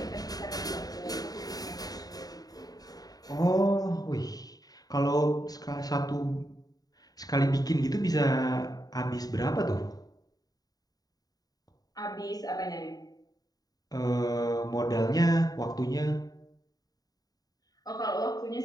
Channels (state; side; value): late; right; 0.18 ms